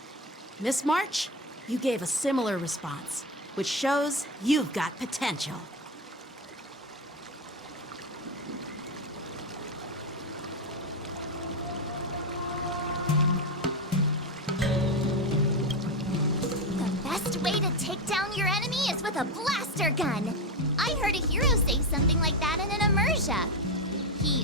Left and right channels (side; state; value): both; normal; correlation 0.14